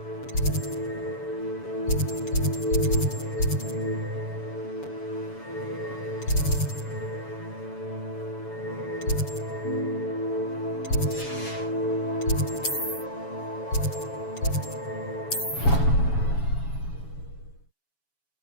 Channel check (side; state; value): right; late; 7.1 ms